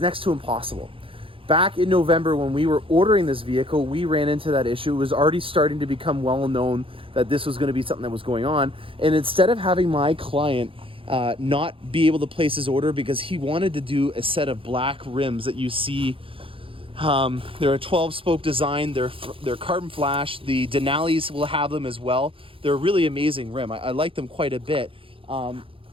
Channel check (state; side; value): late; left; 0.26 ms